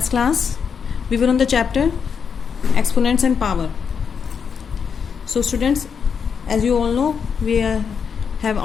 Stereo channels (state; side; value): quieter; right; 6.5 dB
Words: class, we were on the chapter exponents and power. So students, as you all know, we have